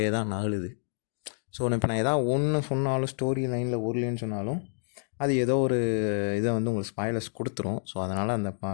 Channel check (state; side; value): silent; right; digital silence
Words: தான் நகலுது. ஸோ இப்போ நான் எதாவது ஒன்று சொன்னாலும், ஸ்டோரி லைனில் ஒரு லைன் சொன்னாலும் அது ஏதோ ஒரு இதை உங்களுக்கு ஸ்பாய்லர்ஸ் கொடுத்துரும். ஸோ அதனால் அந்த